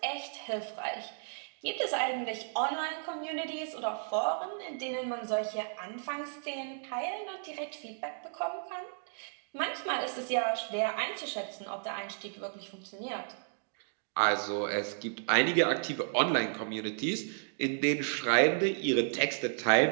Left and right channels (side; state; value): left; silent; digital silence